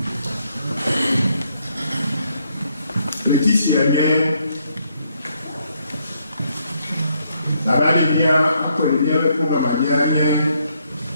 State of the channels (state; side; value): inverted; both; correlation -0.73